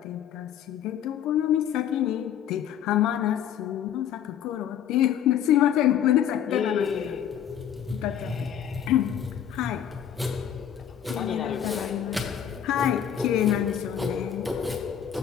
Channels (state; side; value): quieter; right; 9.5 dB